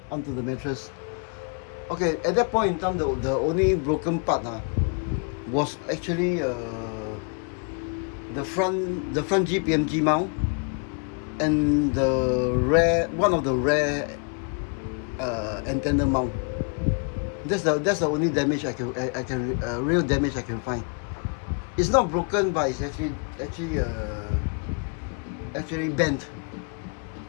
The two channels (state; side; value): quieter; right; 39.7 dB